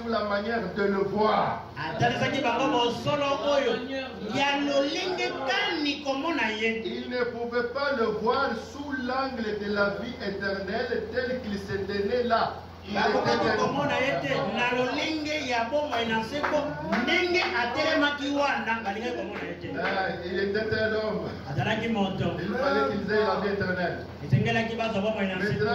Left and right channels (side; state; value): both; identical; correlation 1.00